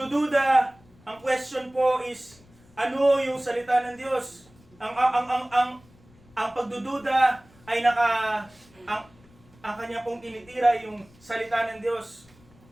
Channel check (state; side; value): noise; left; rumble, 27 dB below the sound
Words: ang question po is, ano yung salita ng Diyos? Ang pagdududa ay ang kanya pong tinitira yung salita ng Diyos.